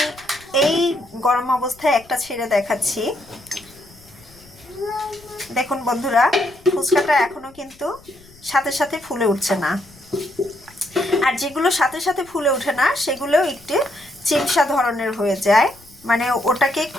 এই গরম অবস্থায় একটা ছেড়ে দেখাচ্ছি। দেখুন বন্ধুরা, ফুচকাটা এখনো কিন্তু সাথে সাথে ফুলে উঠছে না। আর যেগুলো সাথে সাথে ফুলে ওঠে না সেগুলো একটু চিমসা ধরনের হয়ে যায়, মানে ওটাকে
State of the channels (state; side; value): noise; left; rumble, 26 dB below the sound